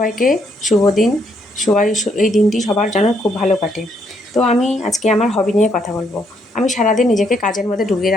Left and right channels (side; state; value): both; normal; correlation 0.73